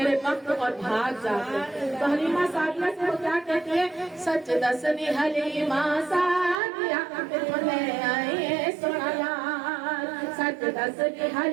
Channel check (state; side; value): drops out; left; at 6.6 s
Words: وقت اور بھاگ جاتے تو حلیمہ سعدیہ سے وہ کیا کہتی ہے سچ دسنی حلیمہ سعدیہ لے آئیے سونا لال سچ دسنی